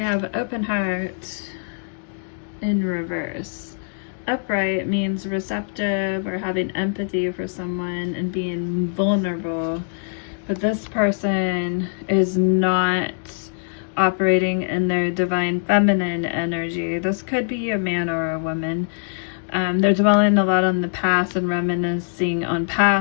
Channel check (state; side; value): silent; right; digital silence